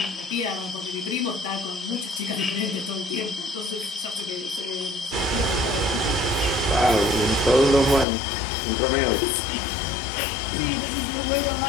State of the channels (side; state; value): right; drops out; at 8.1 s